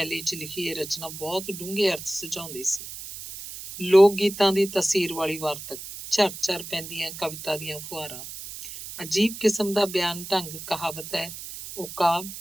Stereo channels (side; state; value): right; noise; hiss, 11 dB below the sound